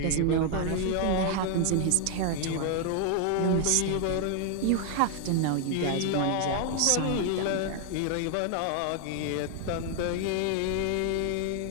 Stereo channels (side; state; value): both; different; correlation 0.00